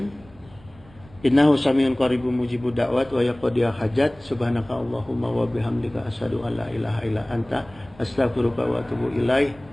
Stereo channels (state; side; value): noise; right; rumble, 24 dB below the sound